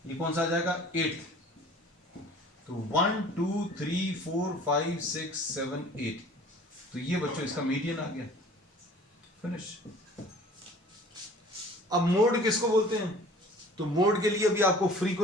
ये कौन सा आ जाएगा, 8। तो 1 2 3 4 5 6 7 8, तो ये बच्चों इसका मीडियन आ गया, फिनिश। अब मोड किसको बोलते हैं, तो मोड के लिए भी आपको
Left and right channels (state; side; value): normal; both; correlation 0.48